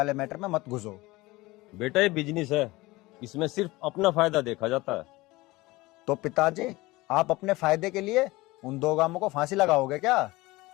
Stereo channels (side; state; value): right; quieter; 20.7 dB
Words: मैटर में मत घुसो। बेटा ये बिजनेस है, इसमें सिर्फ अपना फायदा देखा जाता है। तो पिताजी, आप अपने फायदे के लिए उन 2 गांवों को फांसी लगाओगे क्या?